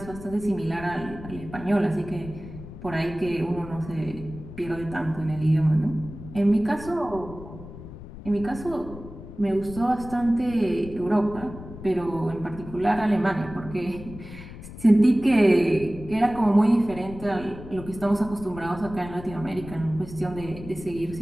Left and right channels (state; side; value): noise; left; rumble, 14 dB below the sound